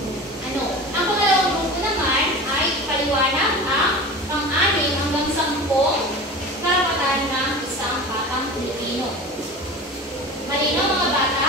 ano. Ang pangalawang grupo naman ay paliwanag ang pang-anim hanggang 10 karapatan ng isang batang Pilipino. Malinaw mga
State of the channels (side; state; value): both; normal; correlation 0.34